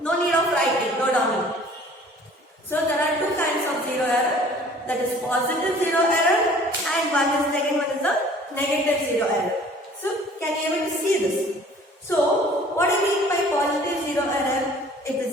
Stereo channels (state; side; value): normal; both; correlation 0.51